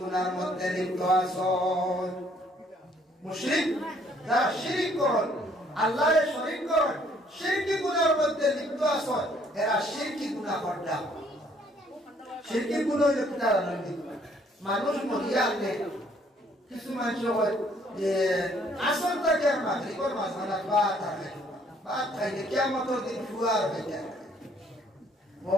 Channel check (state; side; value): normal; both; correlation 0.63